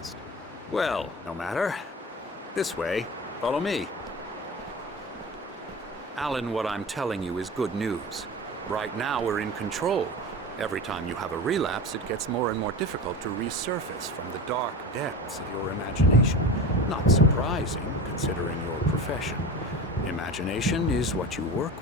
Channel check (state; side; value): normal; both; correlation 0.31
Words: Well, no matter. This way. Follow me. Alan, what I'm telling you is good news. Right now, we're in control. Every time you have a relapse, it gets more and more difficult to resurface from the dark depths of your imagination. Not surprising, considering your profession. Imagination is what you work